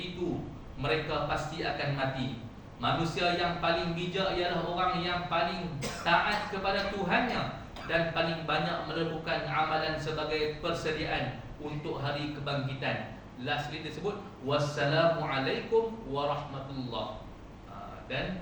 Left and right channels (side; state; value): both; identical; correlation 1.00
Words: mereka pasti akan mati. Manusia yang paling bijak ialah orang yang paling taat kepada Tuhannya dan paling banyak melakukan amalan sebagai persediaan untuk hari kebangkitan. Lastly disebut wassalamualaikum warahmatullah.